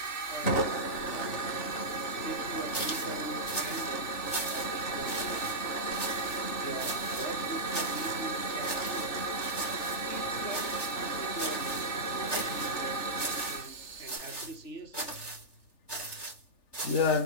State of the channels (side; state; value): right; late; 3.4 ms